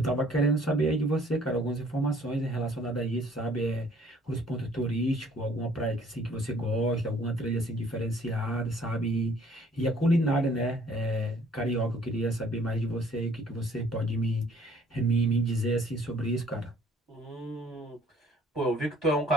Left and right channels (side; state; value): both; normal; correlation 0.58